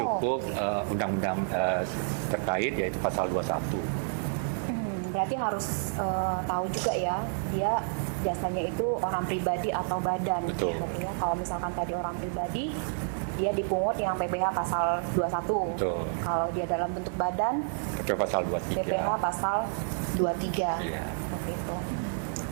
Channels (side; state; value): left; silent; 58 dB below the other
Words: undang-undang terkait yaitu pasal 21. Berarti harus tahu juga ya, dia jasanya itu orang pribadi atau badan. Betul. Ya, kalau misalkan tadi orang pribadi, dia dipungut yang PPh pasal 21. Betul. Kalau dia dalam bentuk badan, PPh pasal 23. PPh pasal 23. Iya. Gitu.